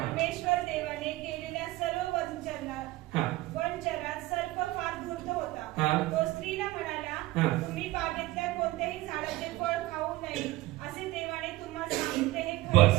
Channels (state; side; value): quieter; left; 18.5 dB